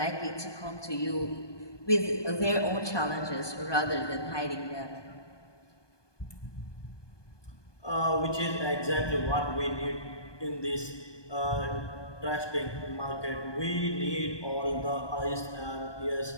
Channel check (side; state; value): right; late; 1.2 ms